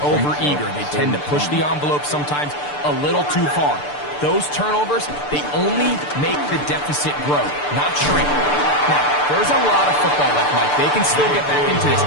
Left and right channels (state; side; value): late; right; 6.8 ms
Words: over-eager. They tend to push the envelope sometimes a little too far. Those turnovers, they only make the deficit grow, not shrink. Now, there's a lot of football left, Mike. They can still get back into this.